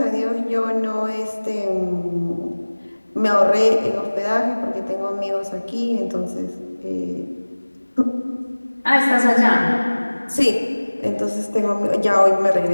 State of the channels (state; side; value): inverted; both; correlation -1.00